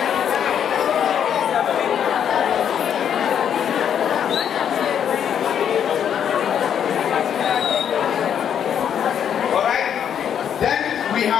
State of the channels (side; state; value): right; quieter; 8.7 dB